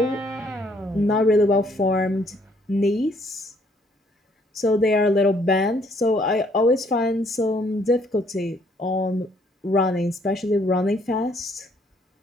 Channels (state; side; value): normal; both; correlation 0.66